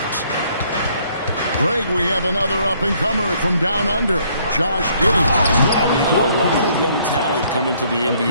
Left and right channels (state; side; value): inverted; both; correlation -0.65